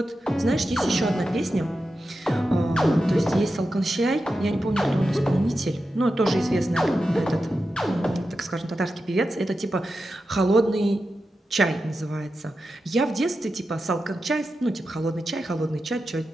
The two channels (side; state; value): both; normal; correlation 0.90